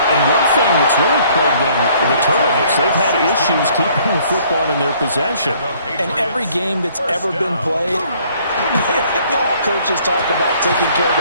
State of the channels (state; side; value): inverted; both; correlation -0.60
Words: And one thing that's really plagued them, the turnovers. They've had issues keeping the football in their possession. And every game that's ever been played, all coaches talk about taking care of